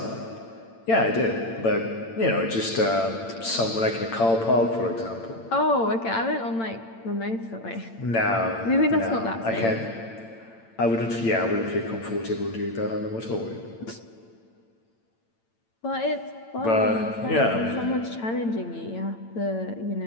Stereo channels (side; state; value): right; late; 8.9 ms